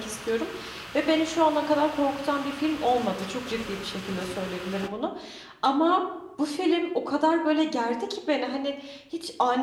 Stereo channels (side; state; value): both; identical; correlation 1.00